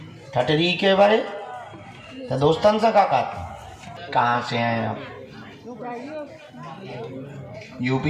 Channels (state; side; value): identical; both; correlation 1.00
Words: ठटरी के बारे तो दोस्तन से का कहाँ से हैं आप?